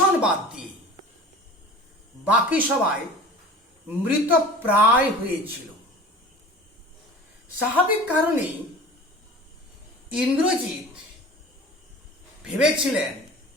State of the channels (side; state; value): both; normal; correlation 0.40